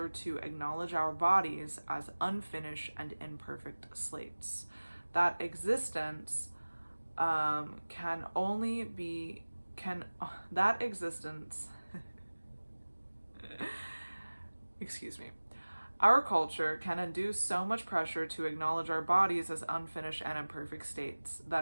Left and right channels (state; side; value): inverted; both; correlation -1.00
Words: to acknowledge our bodies as unfinished and imperfect slates. That existence excuse me. Our culture can induce so much pressure to acknowledge our bodies as unfinished and imperfect states